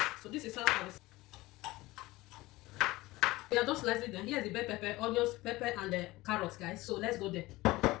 So this is how I will. We are just slicing them. Here's the bell pepper, onions, pepper, and the carrots, guys. So let's go there.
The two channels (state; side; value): quieter; right; 19.6 dB